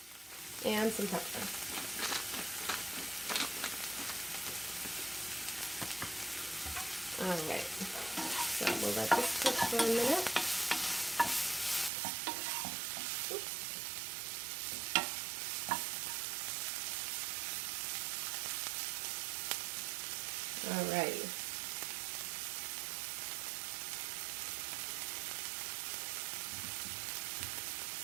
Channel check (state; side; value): drops out; left; at 11.9 s